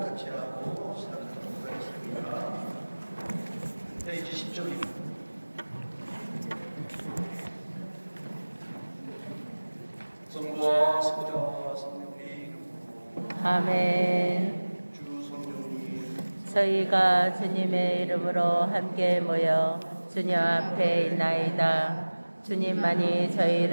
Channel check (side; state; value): both; inverted; correlation -1.00